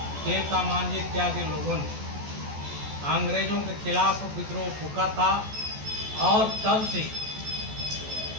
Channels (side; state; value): left; late; 14 ms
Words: तिलका मांझी इत्यादि लोगों ने अंग्रेजों के खिलाफ विद्रोह फूका था और तब से